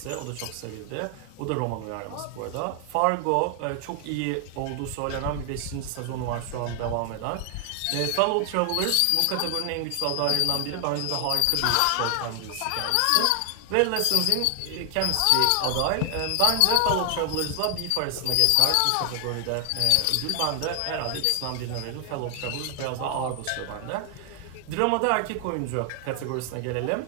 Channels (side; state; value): both; different; correlation 0.00